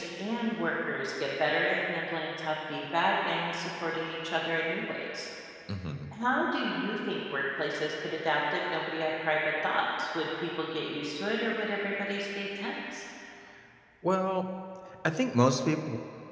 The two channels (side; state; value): both; identical; correlation 1.00